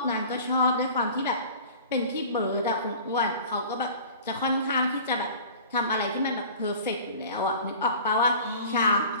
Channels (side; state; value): both; inverted; correlation -0.42